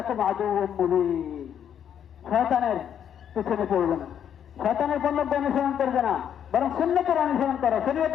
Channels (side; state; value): right; quieter; 9.1 dB